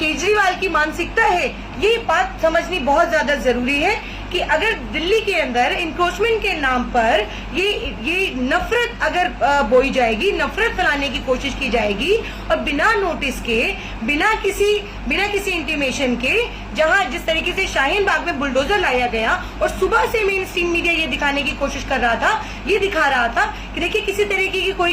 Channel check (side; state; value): both; identical; correlation 1.00